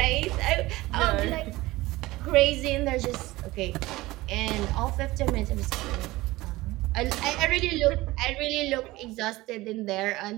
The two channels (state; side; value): quieter; left; 19.2 dB